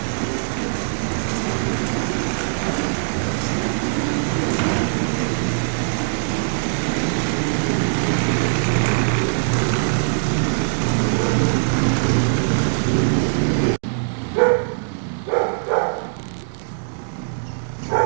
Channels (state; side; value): silent; left; digital silence